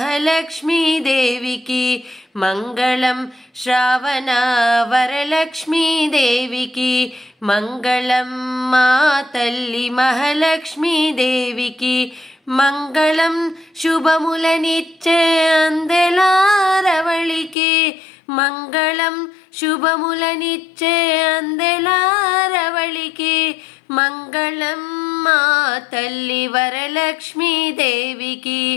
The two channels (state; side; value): drops out; right; at 17.6 s